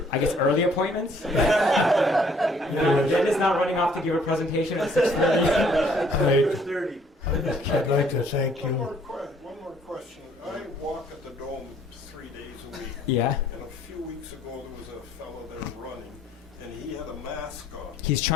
I guess early appointments. Jen is not running off to give a presentation at 6:30. 6:30. I'd like to thank One you. more question. I walk at the Dome 3 days a week. Yeah. And a few weeks ago, there was a fellow there running, and he had a mask on. He's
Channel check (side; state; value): both; normal; correlation 0.61